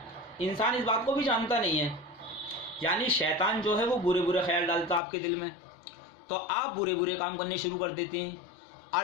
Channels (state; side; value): drops out; right; at 5.0 s